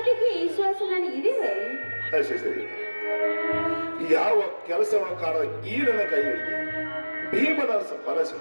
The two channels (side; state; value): both; inverted; correlation -1.00